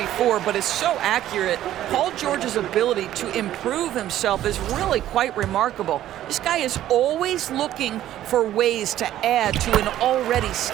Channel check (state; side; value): quieter; left; 12.8 dB